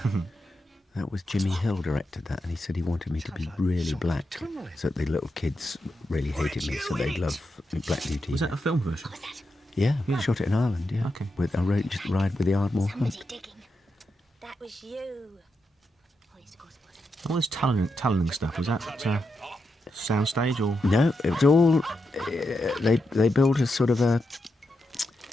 That was Jimmy Hill directed that, and he said he wanted me to be really black, so that the little kids really hated me, so they'd love Black Beauty. Was that a film version? Yeah, we shot it in Ireland, yeah. Okay. With a ride with the Ardmore Hunt. Digging. That was you. Oh, yes, of course it was. All this tunneling stuff, was that soundstage or? No, it was all... they built a sort of a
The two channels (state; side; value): normal; both; correlation 0.86